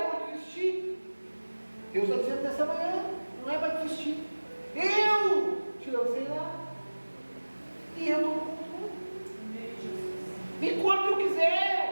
vou desistir. Deus está dizendo nessa manhã, não é para desistir. Eu te lancei lá. E eu estou no controle. E quando eu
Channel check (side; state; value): both; inverted; correlation -1.00